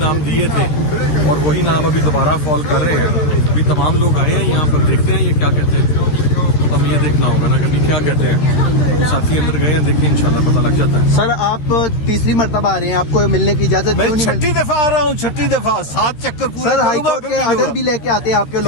दिए थे और वही नाम अभी दोबारा फॉल कर रहे हैं। अभी तमाम लोग आए हैं यहाँ पर, देखते हैं ये क्या कहते हैं। तो हमें ये देखना होगा ना कभी क्या कहते हैं। साथी अंदर गए हैं, देखते हैं, इंशाल्लाह पता लग जाता है। सर आप तीसरी मरतबा आ रहे हैं, आपको मिलने की इजाज़त क्यों नहीं मिलती? 6ठी दफा आ रहा हूँ, 6ठी दफा 7 चक्कर पूरे। सर हाईकोर्ट के आर्डर भी लेके आते हैं आपके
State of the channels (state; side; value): late; right; 13 ms